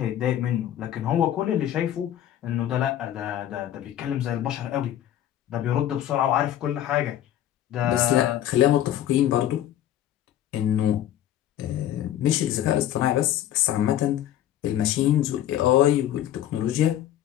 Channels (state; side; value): quieter; right; 11.8 dB